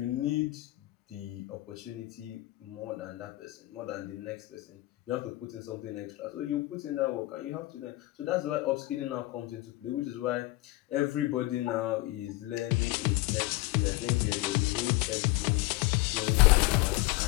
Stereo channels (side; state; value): right; quieter; 19.3 dB